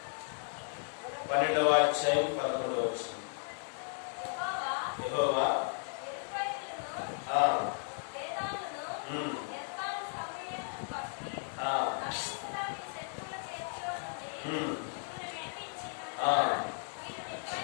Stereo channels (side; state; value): right; silent; 54 dB below the other